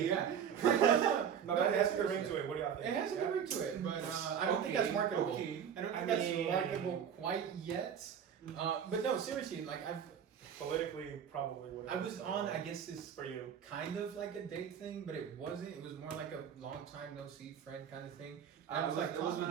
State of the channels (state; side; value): quieter; left; 8.2 dB